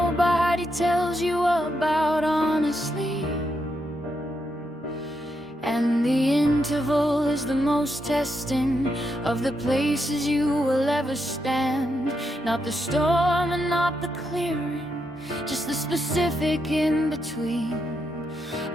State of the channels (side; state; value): both; normal; correlation 0.82